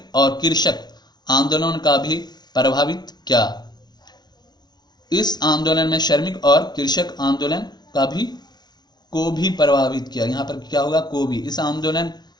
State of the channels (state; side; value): late; right; 0.20 ms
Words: और कृषक आंदोलन का भी प्रभावित किया। इस आंदोलन में श्रमिक और कृषक आंदोलन को भी प्रभावित किया। यहाँ पर क्या होगा? को भी। इस आंदोलन